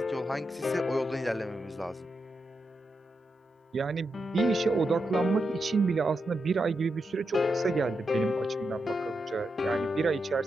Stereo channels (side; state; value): both; normal; correlation 0.86